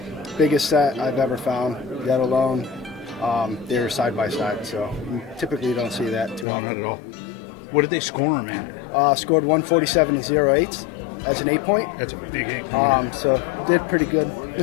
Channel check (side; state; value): right; drops out; at 6.5 s